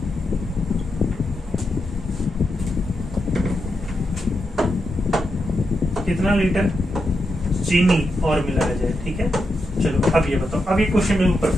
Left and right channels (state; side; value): normal; both; correlation 0.85